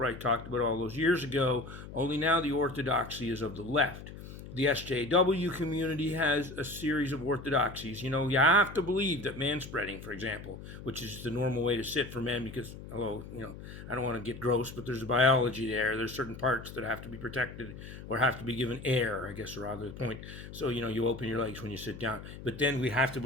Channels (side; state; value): left; noise; hum, 13 dB below the sound